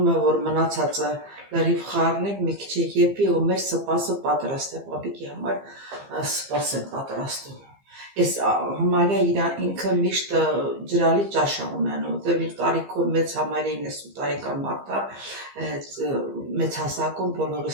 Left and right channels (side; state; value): left; late; 15 ms